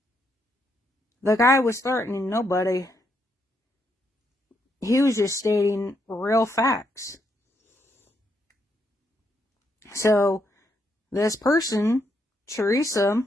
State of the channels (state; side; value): normal; both; correlation 0.77